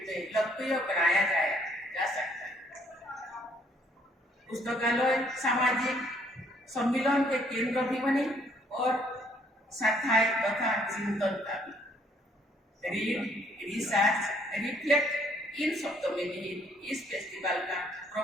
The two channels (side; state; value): both; normal; correlation 0.65